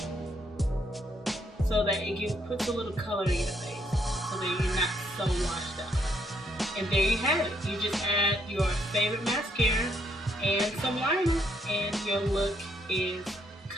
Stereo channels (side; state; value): both; normal; correlation 0.72